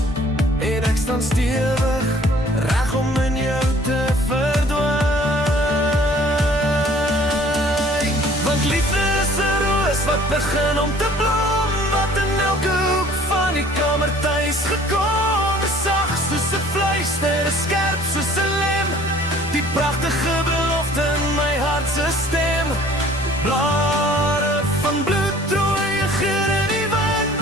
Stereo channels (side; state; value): both; normal; correlation 0.53